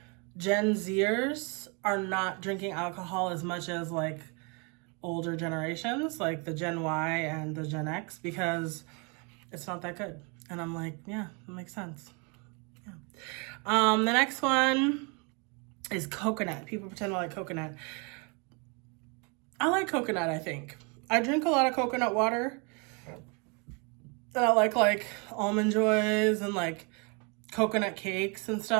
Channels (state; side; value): quieter; left; 32.7 dB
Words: Gen Zers are not drinking alcohol as much as like older generations, like the Gen Y and the Gen X, because it's not that good. And I'm like, yeah, that makes sense. Yeah. The next one is coconut. People pretend to like coconut. I like coconut, I think. I drink a lot of coconut water. And I like almond joys and like coconut cakes and